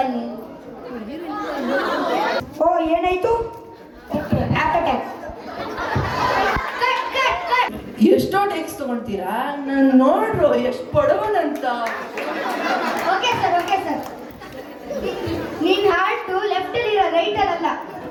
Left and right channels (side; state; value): both; identical; correlation 1.00